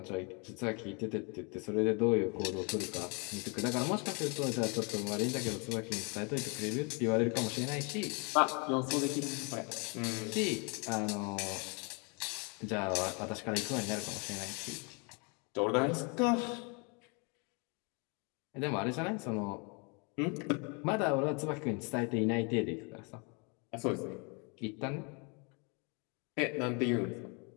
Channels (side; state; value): right; quieter; 33.2 dB